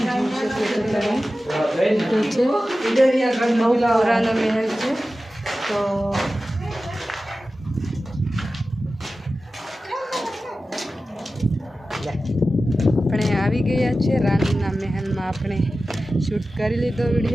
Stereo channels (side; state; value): both; normal; correlation 0.94